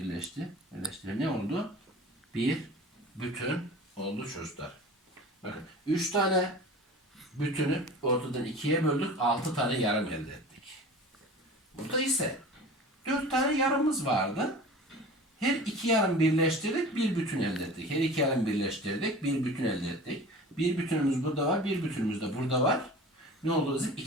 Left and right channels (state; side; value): normal; both; correlation 0.39